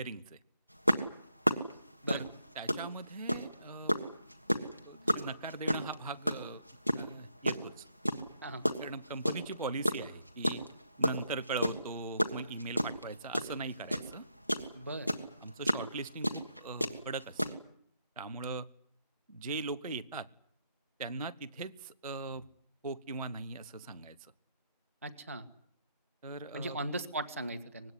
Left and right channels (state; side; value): inverted; both; correlation -0.78